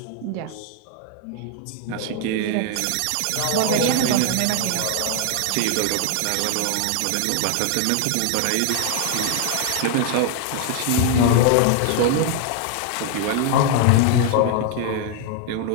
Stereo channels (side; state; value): both; different; correlation 0.00